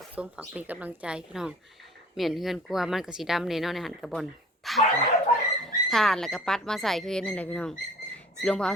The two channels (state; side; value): normal; both; correlation 0.48